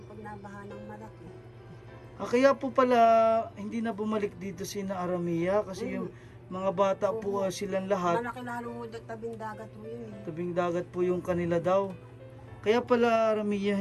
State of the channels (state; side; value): identical; both; correlation 1.00